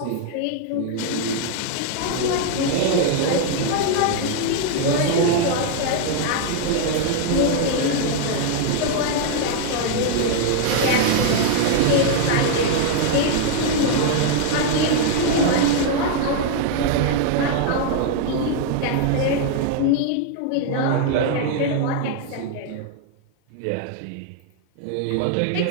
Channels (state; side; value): different; both; correlation 0.00